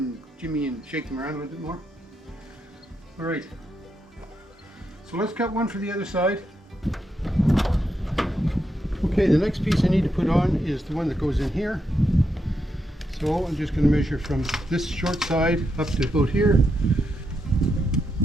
jimmy and shake them around a little bit more. All right. So let's cut one for the other side. Okay, the next piece I need to put on is the one that goes in here. So I'm just going to measure from this short side up to about here.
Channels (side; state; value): both; normal; correlation 0.83